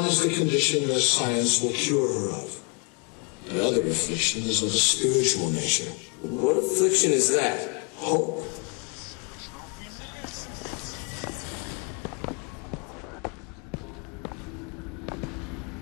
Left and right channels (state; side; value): quieter; right; 35.1 dB